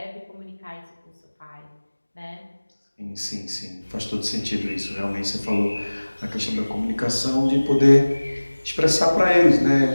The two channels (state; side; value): inverted; both; correlation -1.00